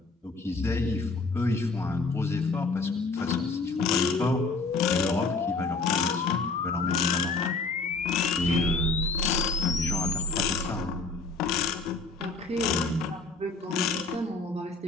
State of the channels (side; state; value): right; quieter; 3.7 dB